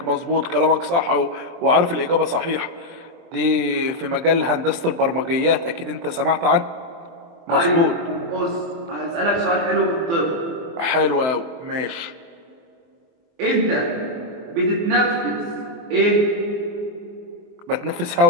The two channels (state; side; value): late; left; 23 ms